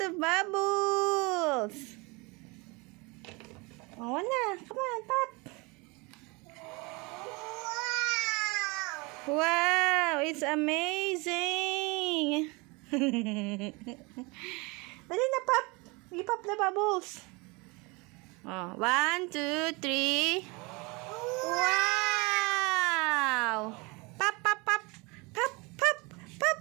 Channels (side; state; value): left; quieter; 27.1 dB